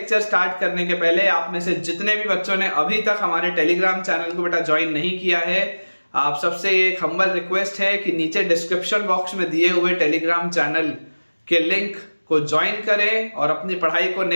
स्टार्ट करने के पहले आप में से जितने भी बच्चों ने अभी तक हमारे टेलीग्राम चैनल को बेटा ज्वाइन नहीं किया है, आप सबसे एक हम्बल रिक्वेस्ट है कि नीचे डिस्क्रिप्शन बॉक्स में दिए हुए टेलीग्राम चैनल के लिंक को ज्वाइन करें और अपनी पढ़ाई को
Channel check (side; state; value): both; inverted; correlation -1.00